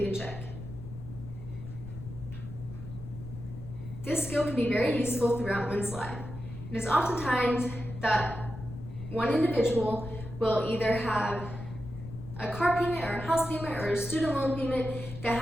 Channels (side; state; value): left; noise; rumble, 11 dB below the sound